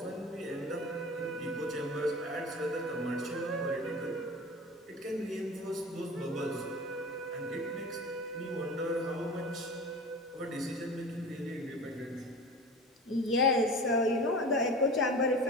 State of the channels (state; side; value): normal; both; correlation 0.35